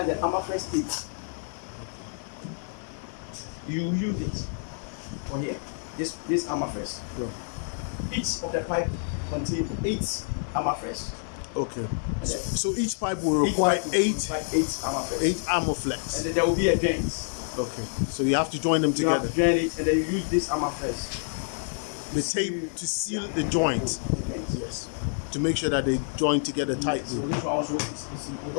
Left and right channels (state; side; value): silent; right; digital silence